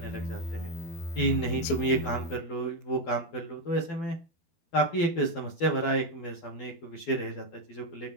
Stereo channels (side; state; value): right; late; 12 ms